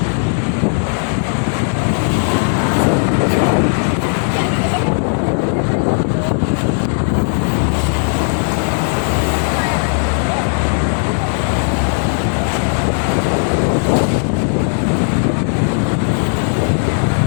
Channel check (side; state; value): right; silent; 63 dB below the other